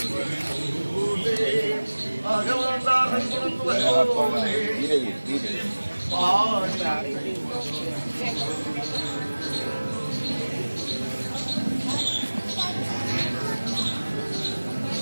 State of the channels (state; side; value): inverted; both; correlation -1.00